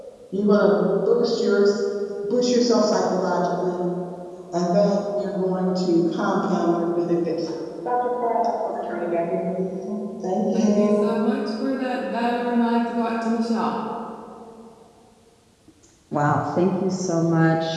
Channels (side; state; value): both; identical; correlation 1.00